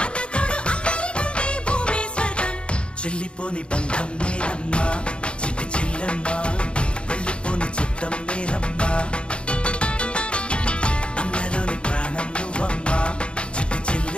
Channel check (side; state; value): right; late; 0.056 ms